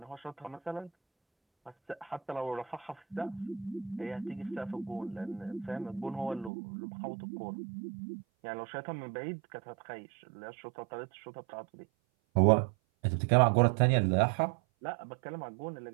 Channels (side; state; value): left; drops out; at 6.5 s